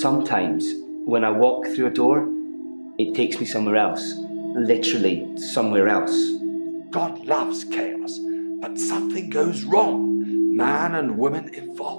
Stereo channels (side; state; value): both; inverted; correlation -1.00